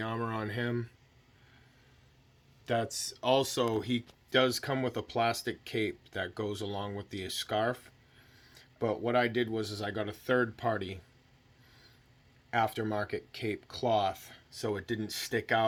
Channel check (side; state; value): both; identical; correlation 1.00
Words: armor on him. That's also, he does come with a plastic cape that goes along with the scarf. But what I did was I got a third-party aftermarket cape cloth, so it didn't stick